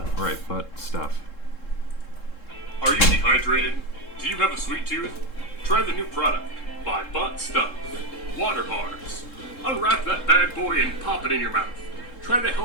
right? But stuff. Are you dehydrated? Do you have a sweet tooth? Try the new product by Butt Stuff. Water bars. Unwrap that bad boy and pop it in your mouth. Try the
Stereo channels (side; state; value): right; late; 3.7 ms